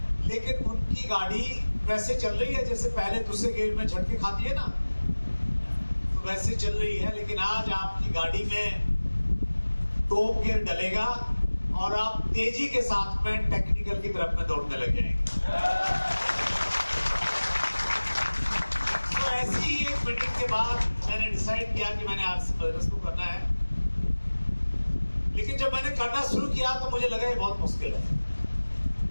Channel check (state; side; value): inverted; both; correlation -1.00